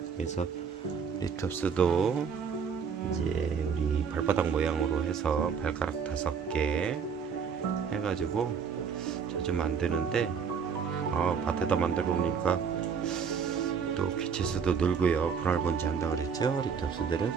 그래서 리톱스도 이제 우리 발바닥 모양으로 해서 발가락 5개 해가지고 자주 만드는데 밭에다 만들어 놓으니까 또 귀체수도 늘고요. 분할번지 한다 그랬죠, 리톱스들은.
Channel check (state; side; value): quieter; left; 6.5 dB